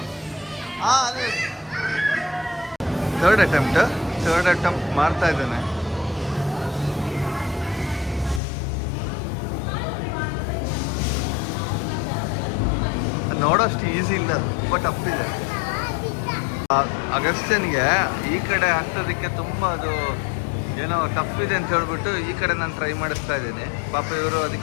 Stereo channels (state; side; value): drops out; right; at 8.4 s